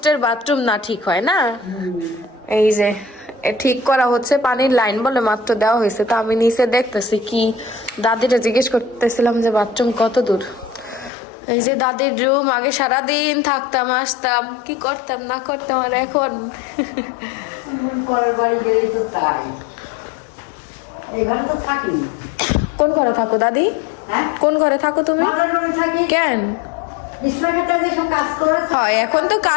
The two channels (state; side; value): drops out; right; at 11.1 s